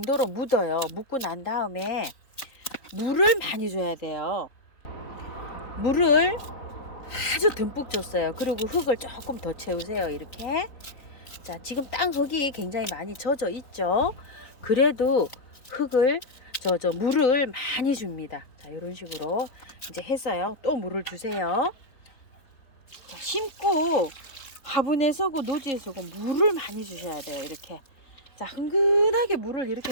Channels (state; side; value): late; right; 3.8 ms